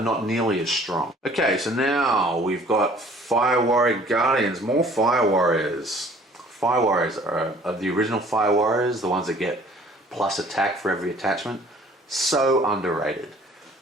not nearly as strong. Okay, so now we've got Fire Warrior Guardians, more Fire Warriors. Fire Warriors are the original Fire Warriors, the ones that get plus attack for every attachment. So underrated.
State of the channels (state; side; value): normal; both; correlation 0.54